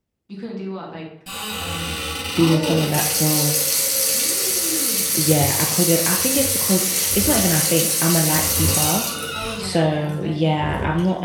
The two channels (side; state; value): both; identical; correlation 1.00